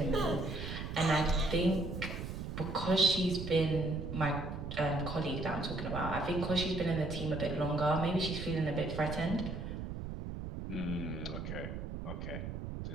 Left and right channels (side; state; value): right; noise; rumble, 6 dB below the sound